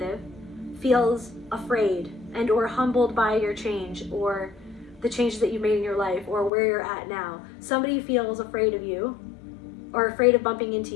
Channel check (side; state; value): right; drops out; at 6.5 s